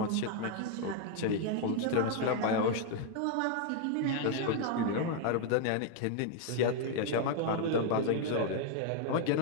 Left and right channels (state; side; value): different; both; correlation 0.00